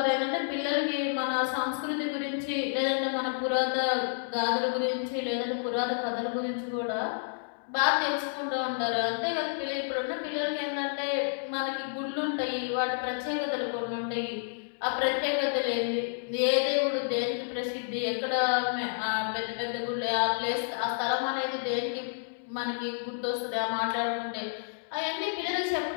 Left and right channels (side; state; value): right; silent; digital silence